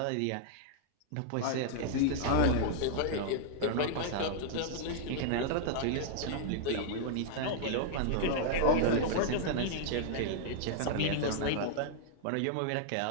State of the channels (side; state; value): both; different; correlation -0.01